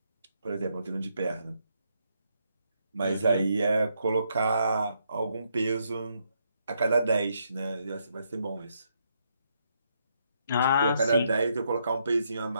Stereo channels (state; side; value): inverted; both; correlation -0.76